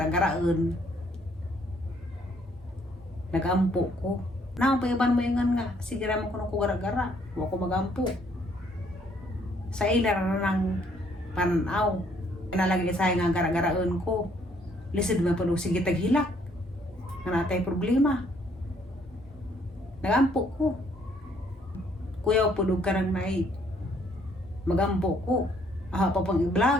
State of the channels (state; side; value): normal; both; correlation 0.66